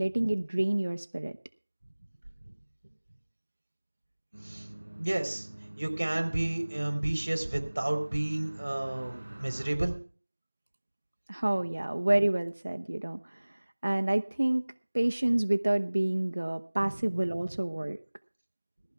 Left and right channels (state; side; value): inverted; both; correlation -1.00